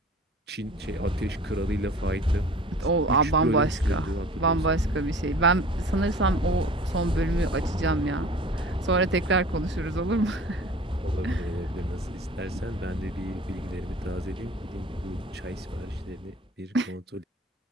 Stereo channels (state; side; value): normal; both; correlation 0.43